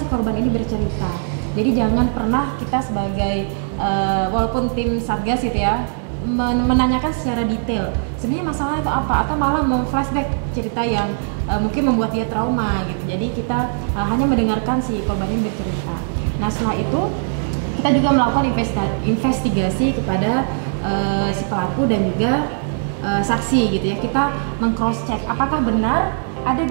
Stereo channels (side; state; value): left; silent; digital silence